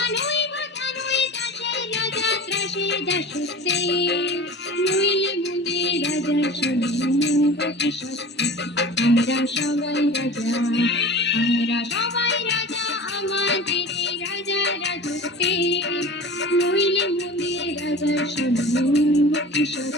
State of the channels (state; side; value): normal; both; correlation 0.37